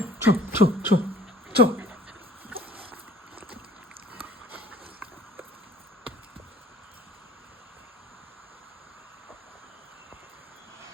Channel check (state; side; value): normal; both; correlation 0.52